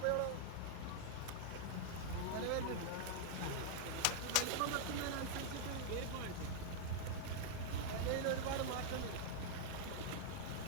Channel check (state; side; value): different; both; correlation -0.01